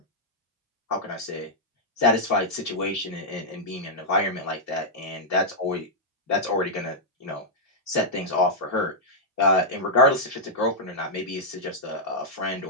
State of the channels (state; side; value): normal; both; correlation -0.07